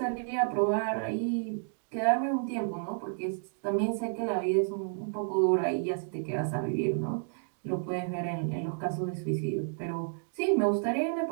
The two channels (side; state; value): left; silent; digital silence